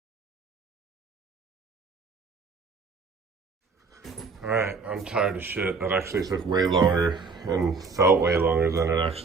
Alright, I'm tired of shit. That actually took way longer and felt way longer than it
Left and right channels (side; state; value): left; quieter; 4.6 dB